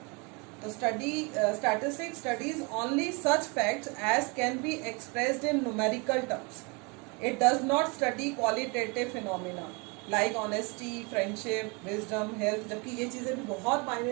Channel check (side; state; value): left; quieter; 29.8 dB